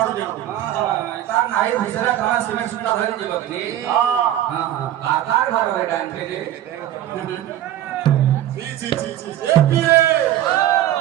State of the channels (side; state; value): left; quieter; 12.4 dB